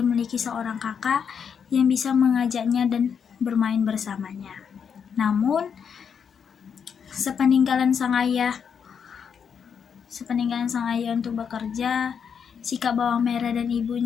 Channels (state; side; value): quieter; right; 7.1 dB